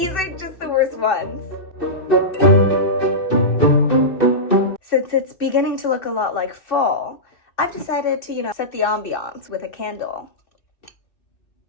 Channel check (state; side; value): late; right; 2.6 ms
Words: are just the worst ones. Since it's beginning to look a lot like fall, I've decided to, set the ambiance with a candle.